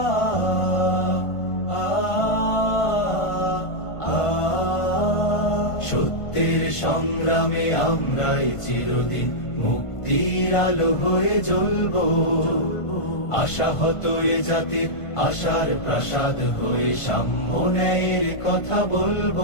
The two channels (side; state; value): right; late; 1.5 ms